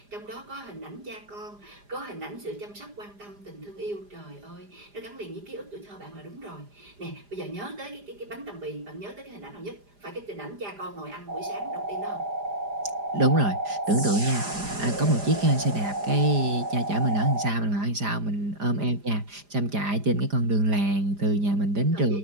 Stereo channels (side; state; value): left; late; 4.9 ms